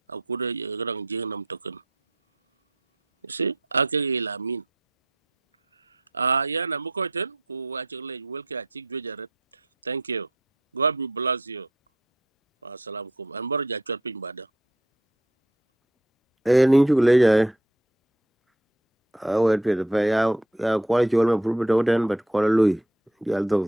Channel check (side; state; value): both; normal; correlation 0.64